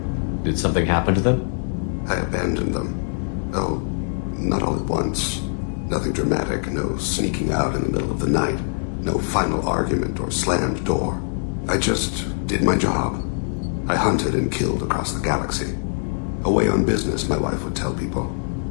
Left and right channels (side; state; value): right; silent; digital silence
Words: Did something happen to them? I abandoned them. Oh, not all at once. Nothing dramatic, no sneaking out in the middle of the night. No final argument or slammed door. I just did my job. I hunted and killed across the galaxy. Away on business, my wife would tell people.